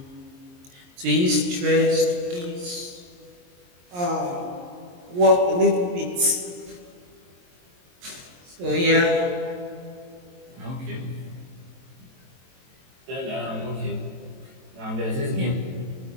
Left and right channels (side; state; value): left; late; 22 ms